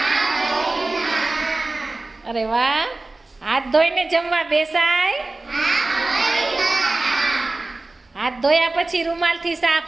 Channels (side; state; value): left; quieter; 3.1 dB